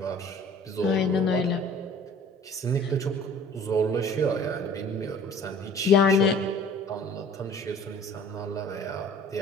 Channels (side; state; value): both; normal; correlation 0.48